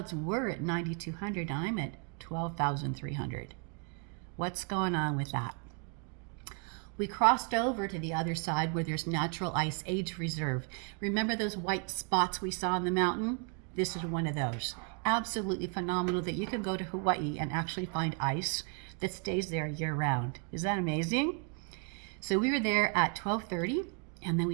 were at 9,200, and I'm at 12,300. What's going on with that? We crossed over to the other side where there's natural ice age reserve. Remember those white spots we saw on the mountain? This is one of those. Absolutely phenomenal that you can go to Hawaii and actually find ice that stays there year round. Is that amazing? So we were there at 12:30, and then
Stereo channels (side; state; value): left; quieter; 36.6 dB